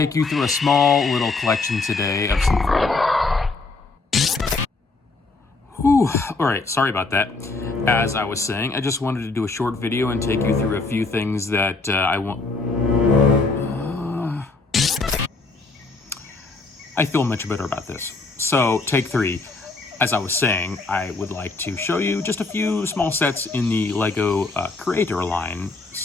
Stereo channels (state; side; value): quieter; right; 3.7 dB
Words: you through a small little collection today of some... Alright, sorry about that. As I was saying, I just wanted to do a short video and take you through a few things that I feel much better about this. So, take 3. As I was saying, I would like to show you just a few small sets in the LEGO Creator line,